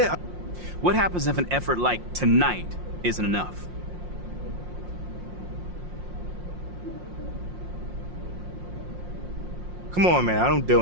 What happens if an effort like tonight isn't enough? Come on, man. I don't deal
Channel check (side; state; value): left; late; 5.6 ms